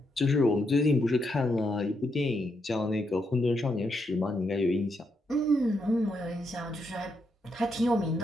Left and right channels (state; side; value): normal; both; correlation 0.80